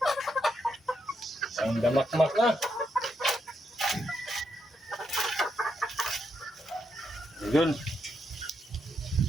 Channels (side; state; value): both; normal; correlation 0.81